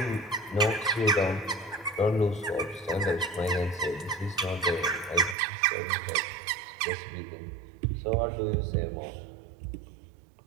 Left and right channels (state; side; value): drops out; left; at 5.4 s